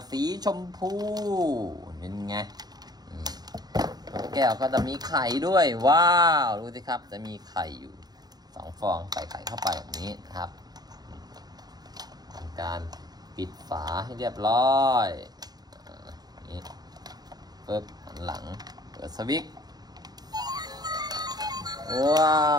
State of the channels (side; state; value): left; late; 0.19 ms